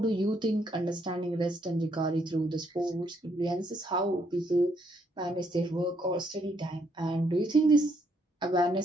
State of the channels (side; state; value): both; normal; correlation 0.72